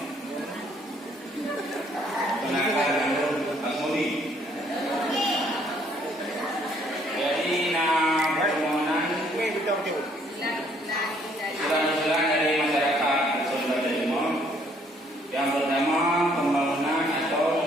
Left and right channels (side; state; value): both; normal; correlation 0.65